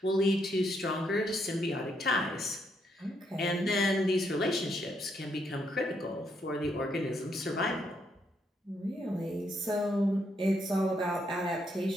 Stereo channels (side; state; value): both; normal; correlation 0.75